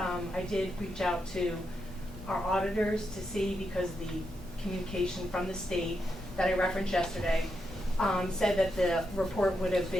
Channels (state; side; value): normal; both; correlation 0.84